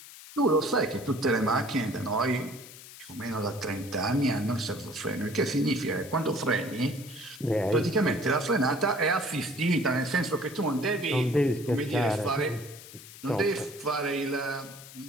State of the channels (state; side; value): noise; left; hiss, 17 dB below the sound